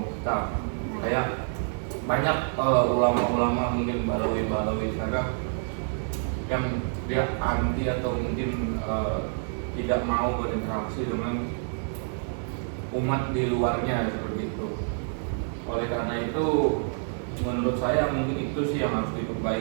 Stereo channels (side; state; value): left; silent; 60 dB below the other